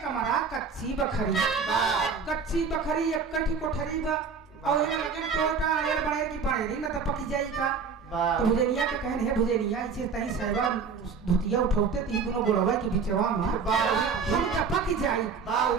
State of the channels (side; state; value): left; quieter; 5.5 dB